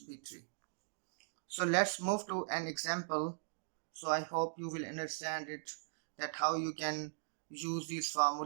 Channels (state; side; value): silent; left; digital silence